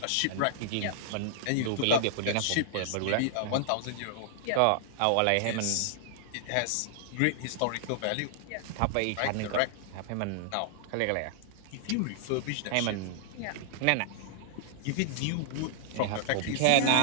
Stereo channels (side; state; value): both; different; correlation -0.01